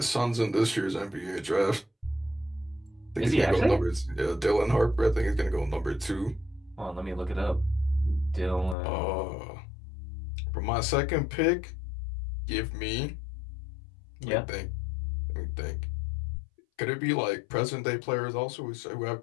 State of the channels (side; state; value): right; drops out; at 8.8 s